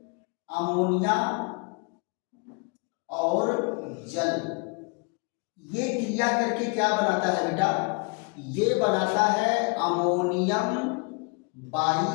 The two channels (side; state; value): right; quieter; 33.5 dB